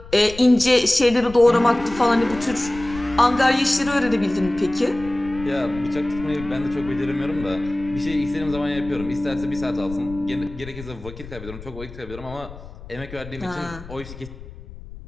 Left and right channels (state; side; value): noise; left; rumble, 15 dB below the sound